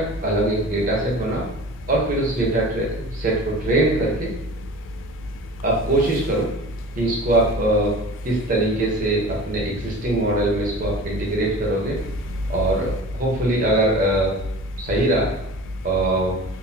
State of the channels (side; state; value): both; normal; correlation 0.39